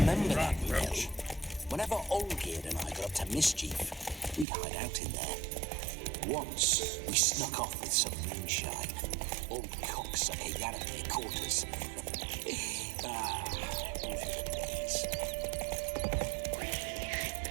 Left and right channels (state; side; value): drops out; left; at 4.5 s